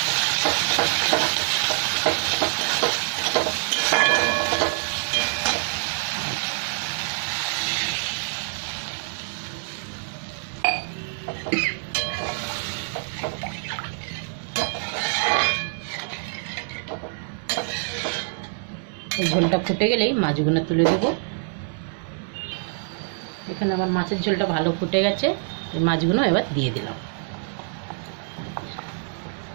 এই ঝোলটা ফুটে গেলেই মাছগুলো তুলে দেব। এখানে আমার মাছের ঝোলটা ভালো ফুটে গেছে, এই মাছগুলো এবার দিয়ে দিলাম।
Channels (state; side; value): silent; left; digital silence